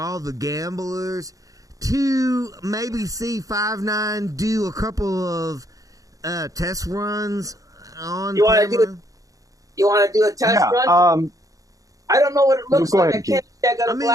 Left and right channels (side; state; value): left; late; 0.17 ms